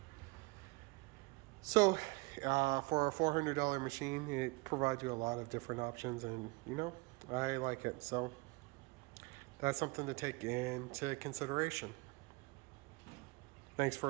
So, for a $400 machine, it provides you a lot of different options, and you know, I like it. So, that's something to take into consideration. Thanks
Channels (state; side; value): quieter; left; 25.6 dB